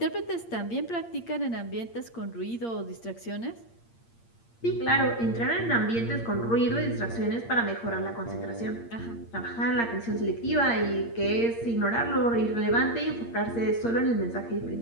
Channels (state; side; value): late; right; 8.7 ms